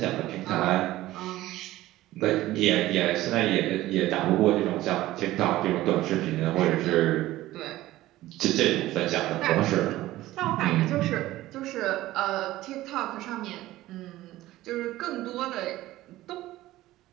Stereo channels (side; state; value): left; quieter; 16.2 dB